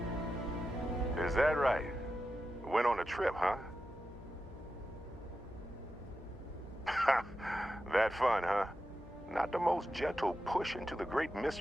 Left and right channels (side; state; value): both; normal; correlation 0.90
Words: Is that right? Went on a trip, huh? That fun, huh? Not the most gentle push into the great